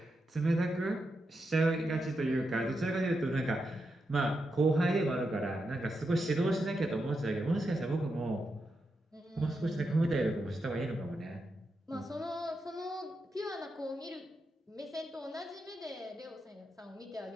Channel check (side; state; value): both; normal; correlation 0.86